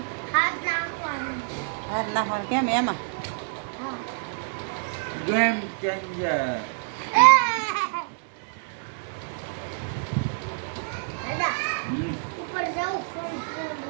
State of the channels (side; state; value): left; silent; digital silence